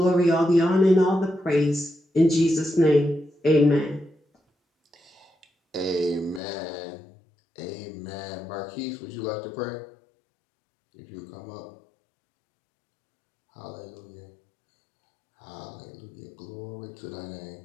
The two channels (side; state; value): right; drops out; at 6.4 s